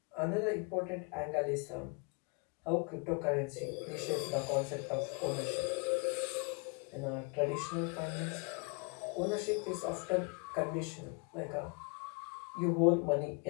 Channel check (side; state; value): right; quieter; 34.1 dB